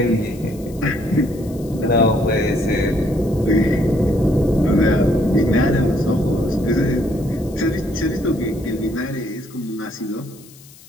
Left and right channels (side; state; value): left; noise; hiss, 23 dB below the sound